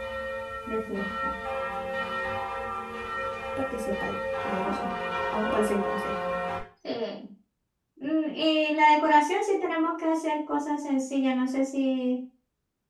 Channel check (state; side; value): identical; both; correlation 1.00